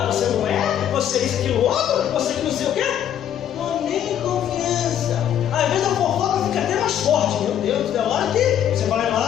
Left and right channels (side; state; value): right; quieter; 10.2 dB